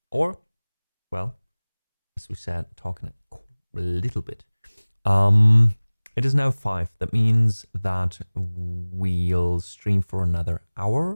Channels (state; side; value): inverted; both; correlation -1.00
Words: Or, well, as we said, talking a little bit. It is now 5. That means that we'll stream for another